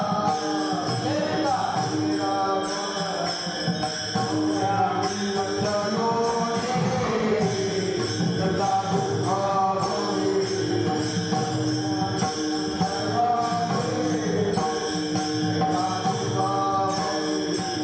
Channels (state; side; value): identical; both; correlation 1.00